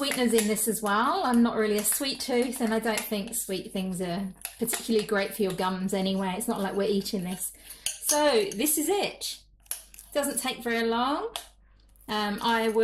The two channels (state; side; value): identical; both; correlation 1.00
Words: in this as well. I'm not really a sweet tooth, and I don't think sweet things are particularly great for your gums anyway. It's not like we're eating this. So this is it. Doesn't take very long. I